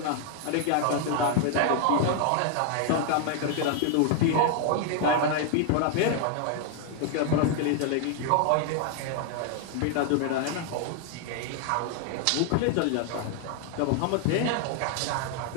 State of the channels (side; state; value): both; different; correlation 0.00